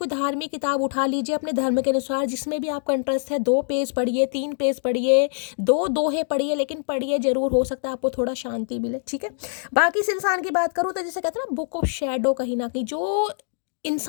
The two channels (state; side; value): silent; right; digital silence